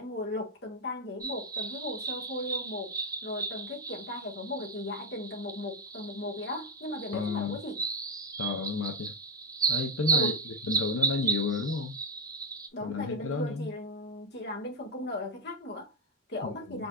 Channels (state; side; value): normal; both; correlation 0.04